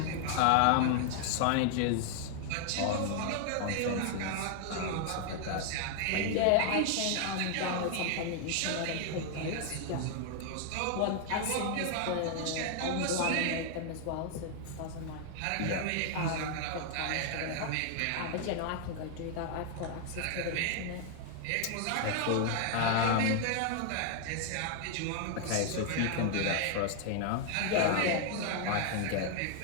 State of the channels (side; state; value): both; different; correlation 0.00